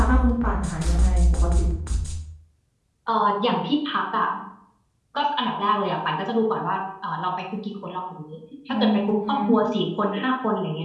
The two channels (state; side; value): identical; both; correlation 1.00